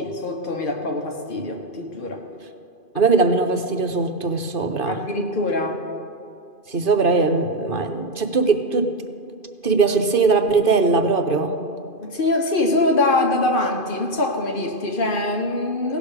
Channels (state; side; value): late; right; 2.5 ms